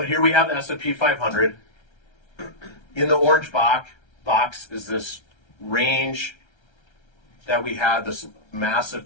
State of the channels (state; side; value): late; right; 1.3 ms